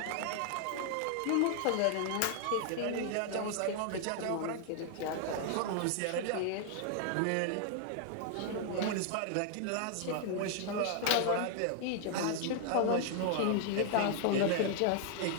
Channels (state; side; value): different; both; correlation 0.00